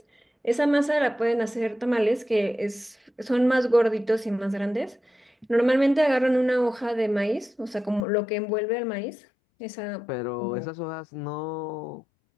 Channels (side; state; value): right; drops out; at 8.0 s